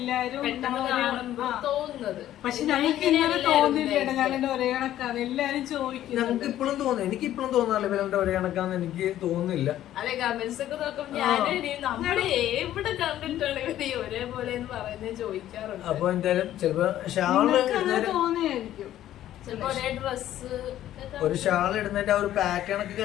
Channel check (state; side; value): quieter; right; 12.6 dB